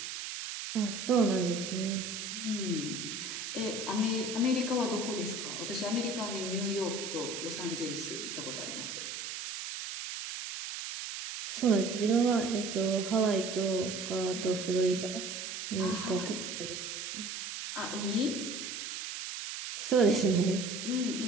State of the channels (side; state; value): right; noise; hiss, 6 dB below the sound